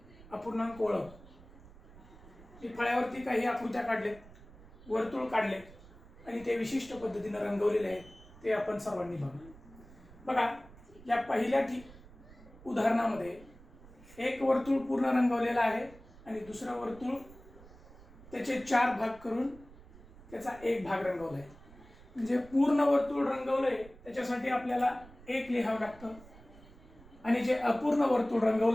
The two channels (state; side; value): noise; right; rumble, 21 dB below the sound